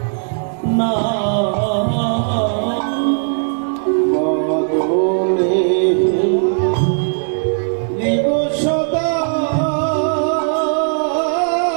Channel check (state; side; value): silent; left; 68 dB below the other